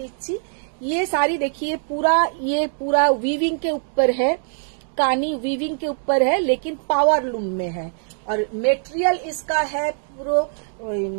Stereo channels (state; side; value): silent; left; digital silence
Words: দিচ্ছি। ये साड़ी देखिए पूरा वीविंग के ऊपर है, कानी वीविंग के ऊपर है, लेकिन पावर लूम में है। और मेटेरियल इसका है পুরো